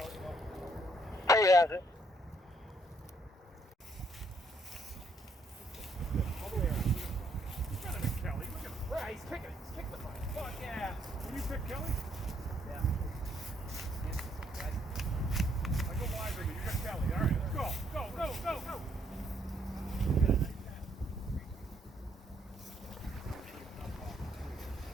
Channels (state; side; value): normal; both; correlation 0.70